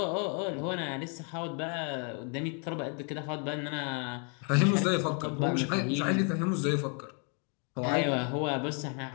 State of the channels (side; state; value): right; quieter; 38.7 dB